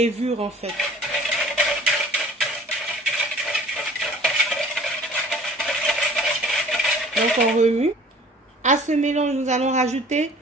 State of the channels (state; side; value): normal; both; correlation 0.50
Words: en fait. Donc on remue. À ce mélange, nous allons rajouter